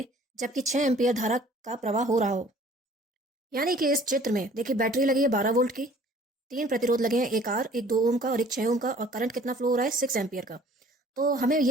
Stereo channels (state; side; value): normal; both; correlation 0.53